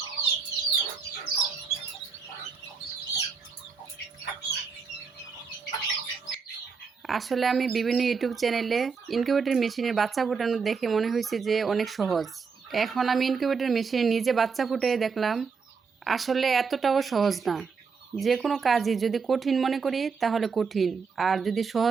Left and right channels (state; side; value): quieter; left; 5.4 dB